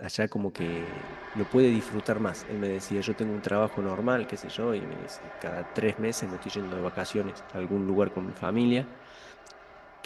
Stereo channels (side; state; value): both; identical; correlation 1.00